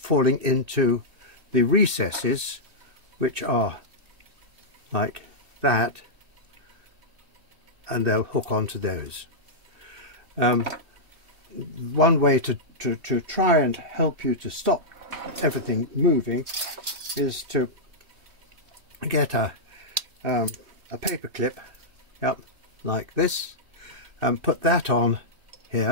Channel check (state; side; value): late; left; 3.1 ms